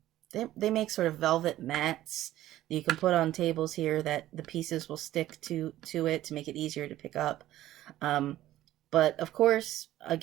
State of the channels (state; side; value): quieter; left; 14.2 dB